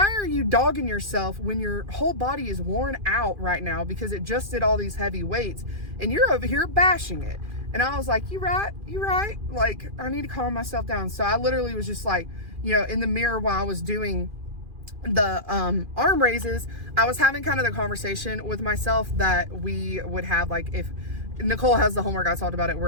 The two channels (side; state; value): left; late; 2.4 ms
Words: are you dogging yourself when your whole body is worn out right now because it just did all these heavy weights and you're over here bashing it? And I was like, you right. Like, I need to calm myself down. So I literally was just like, you know, in the mirror while I was doing the arm raises, I was having kind of the conversation with myself that we would have, like, if Nicole has the homework, I talked about it,